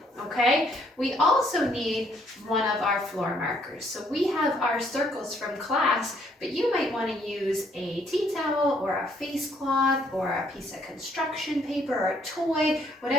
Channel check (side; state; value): both; normal; correlation 0.67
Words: Okay, we also need one of our floor markers. So we have our circles from class, but you might want to use a tea towel or a face cloth or a piece of construction paper or a toy,